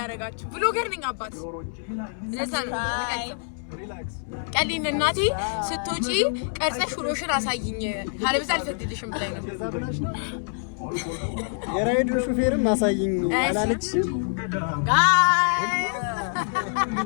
ብሎገር ነኝ አባት ለሰን ሪላክስ ቀሊን እናቴ ስትወጪ ቀርጸሽ ውሎሽን አሳይኝ ካለበዛ አልፈቅድልሽም ብላኝ ነው የራይዱ ሹፌርም አሳይኝ አላለችም ጋይስ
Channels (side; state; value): right; silent; 61 dB below the other